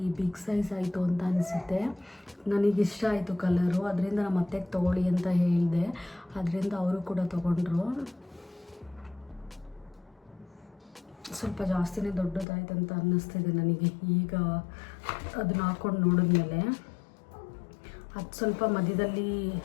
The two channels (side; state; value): right; drops out; at 12.5 s